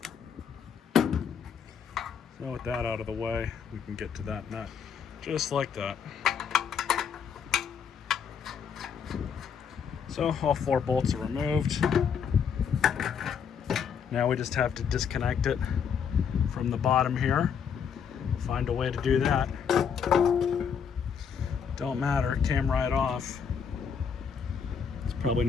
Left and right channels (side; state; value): right; quieter; 7.1 dB